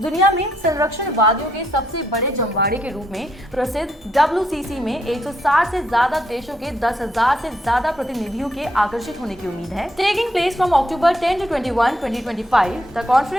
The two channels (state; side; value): normal; both; correlation 0.75